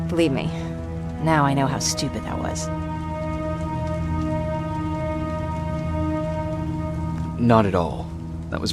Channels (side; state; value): both; identical; correlation 1.00